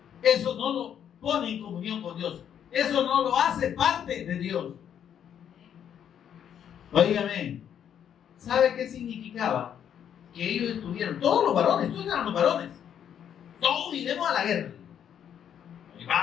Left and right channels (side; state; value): right; quieter; 9.1 dB